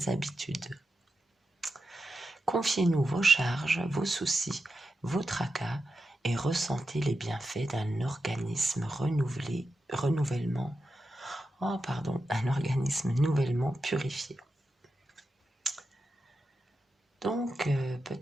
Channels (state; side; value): normal; both; correlation 0.89